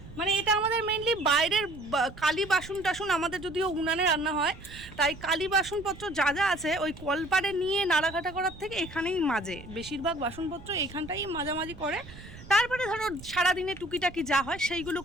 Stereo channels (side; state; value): right; noise; rumble, 17 dB below the sound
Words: মানে এটা আমাদের মেইনলি বাইরের কালি বাসন টাসন, আমাদের যদিও উনানে রান্না হয়, তাই কালি বাসনপত্র যা যা আছে ওই কলপারে নিয়ে নাড়াঘাটা করার থেকে এখানেই মাজে। বেশিরভাগ বাসনপত্র এইখানটাই মাজামাজি করে, তারপরে ধরো সারাদিনে টুকিটাকি যা হয় সেইগুলো